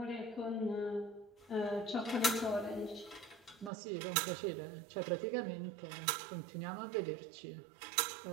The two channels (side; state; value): left; drops out; at 3.7 s